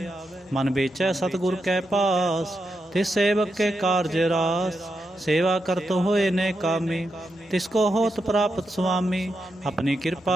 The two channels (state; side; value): normal; both; correlation 0.86